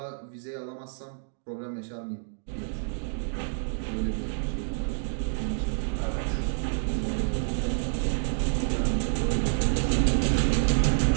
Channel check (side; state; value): left; silent; digital silence